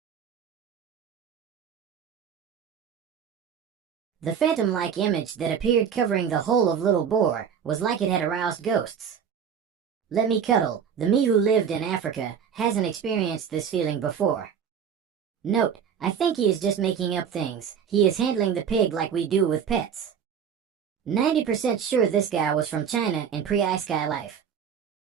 The phantom-like image that appeared covering the whole of Little Boar was like it had aroused ghosts. Let me cuddle, the me who lived in Africa hasn't experienced this feeling before. Note, I think he is just making up things. He is handling the pig like we do with pets. 90% sure this guy was from China in pre-Ice Sky life.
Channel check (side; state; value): left; quieter; 7.7 dB